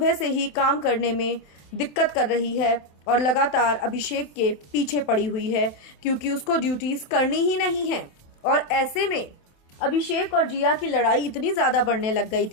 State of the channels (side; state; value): right; late; 27 ms